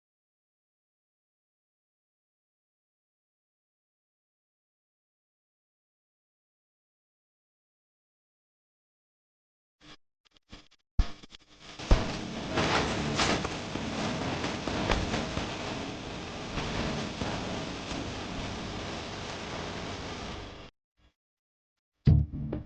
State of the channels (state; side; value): identical; both; correlation 1.00